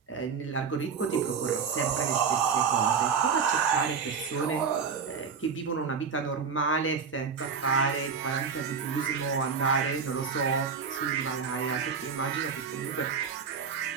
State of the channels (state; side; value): quieter; left; 6.0 dB